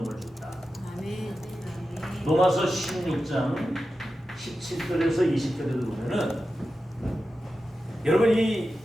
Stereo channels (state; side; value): normal; both; correlation 0.92